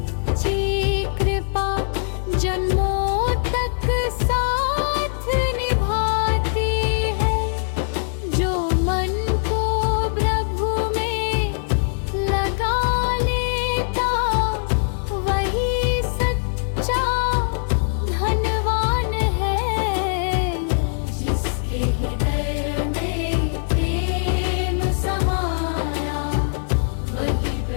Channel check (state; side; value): silent; right; 64 dB below the other